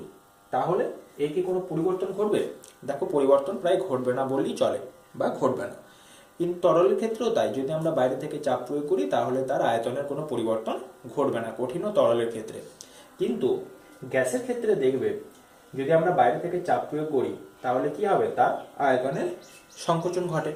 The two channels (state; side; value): identical; both; correlation 1.00